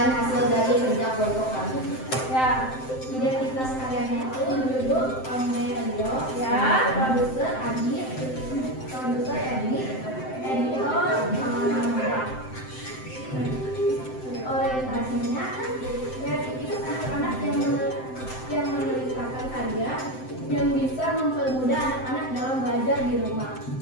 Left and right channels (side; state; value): right; late; 7.7 ms